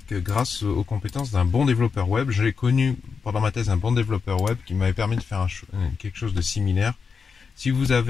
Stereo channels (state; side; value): quieter; right; 5.5 dB